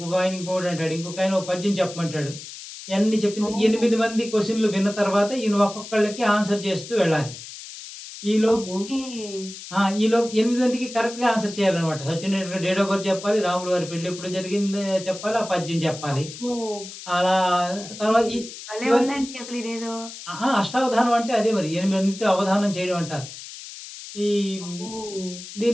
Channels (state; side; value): noise; left; hiss, 13 dB below the sound